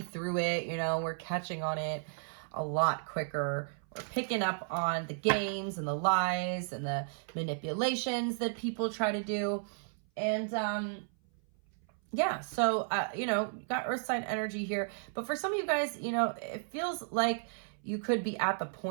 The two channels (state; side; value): silent; left; 55 dB below the other